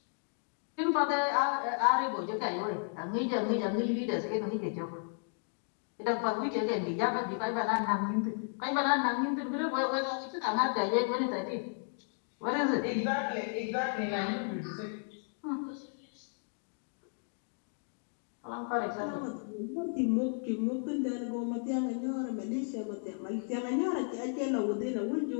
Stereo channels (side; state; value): right; silent; 55 dB below the other